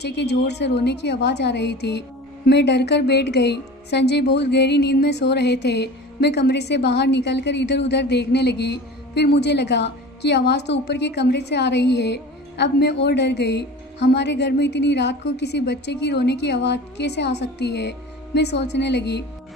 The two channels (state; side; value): normal; both; correlation 0.37